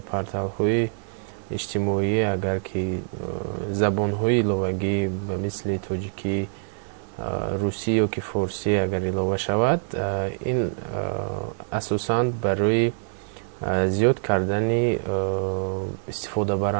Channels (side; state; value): left; silent; 62 dB below the other